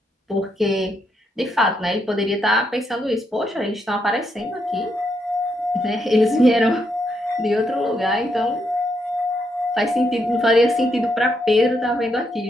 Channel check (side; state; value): both; normal; correlation 0.79